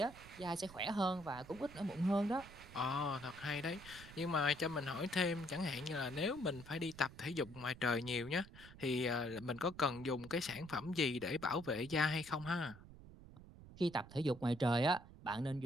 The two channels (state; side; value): noise; right; rumble, 17 dB below the sound